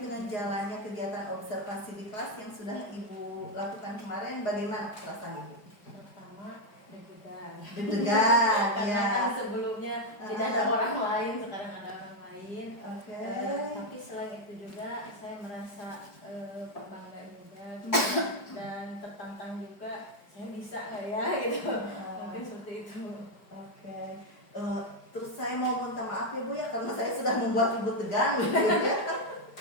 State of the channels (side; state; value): right; late; 4.8 ms